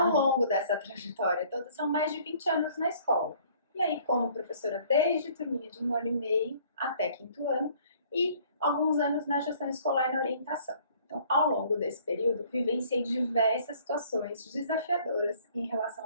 longo dessa trajetória toda, são mais de 20 anos na escola. E aí, como professora desde turminha de 1 ano e meio até 5º ano, e alguns anos na gestão escolar e na orientação. Então, ao longo desse período, vivenciei diversas situações desafiadoras em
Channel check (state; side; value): inverted; both; correlation -0.56